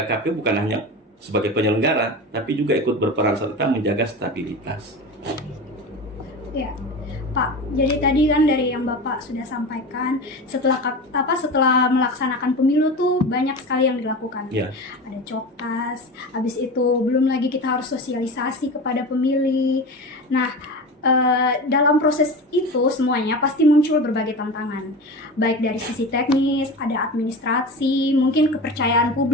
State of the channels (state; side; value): normal; both; correlation 0.29